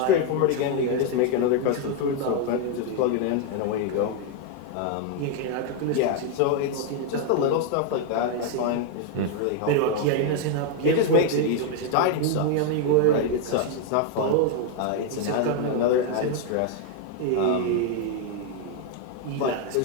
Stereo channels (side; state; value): both; different; correlation 0.00